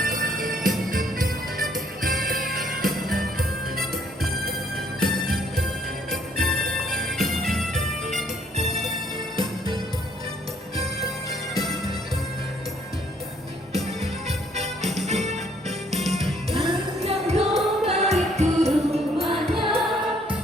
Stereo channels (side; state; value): both; normal; correlation 0.65